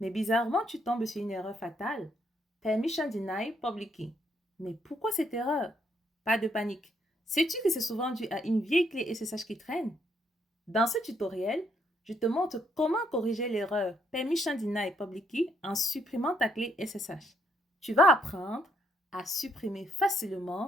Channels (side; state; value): both; normal; correlation 0.73